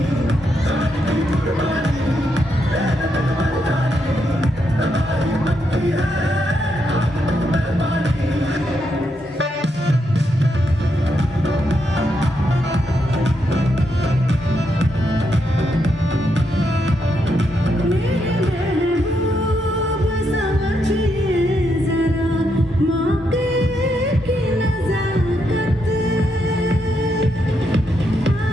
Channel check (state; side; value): normal; both; correlation 0.80